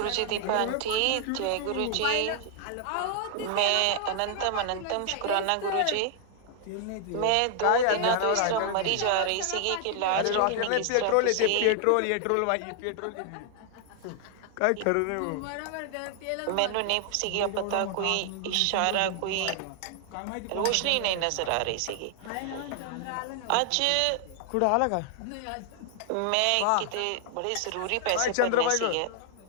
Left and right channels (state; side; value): different; both; correlation 0.00